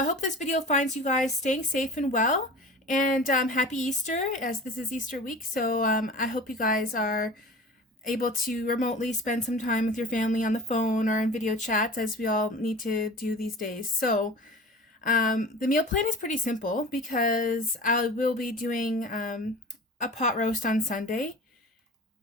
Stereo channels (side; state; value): both; normal; correlation 0.38